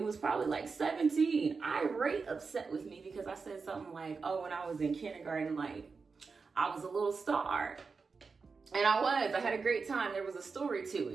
was probably like 17, irate, upset with me because I said something like, oh, when I was in kindergarten, like I was a little star. And I had a great time. There was a story to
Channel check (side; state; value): left; quieter; 4.8 dB